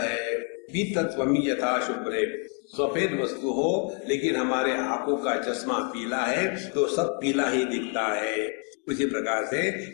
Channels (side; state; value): right; quieter; 38.9 dB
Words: पीतत्वमि यथा शुभ्रे, सफेद वस्तु हो लेकिन हमारे आंखों का चश्मा पीला है तो सब पीला ही दिखता है। उसी प्रकार से